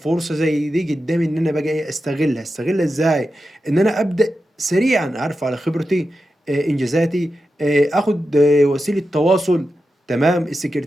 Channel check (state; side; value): normal; both; correlation 0.90